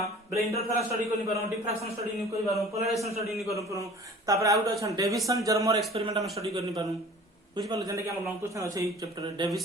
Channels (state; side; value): normal; both; correlation 0.45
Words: बेले इंटरफेरेंस स्टडी करि पारो डिफ्रैक्शन स्टडी नि करि पारो पोलराइजेशन स्टडी नि करि पारो तापर आउट अछि डेविसन जर्मर एक्सपेरिमेंट हम स्टडी करि पारो बुझ पालो जने कि हम लॉन्ग क्वेश्चन अछि ई chapter